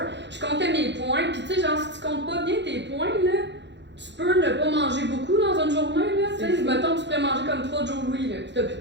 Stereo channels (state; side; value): late; left; 0.52 ms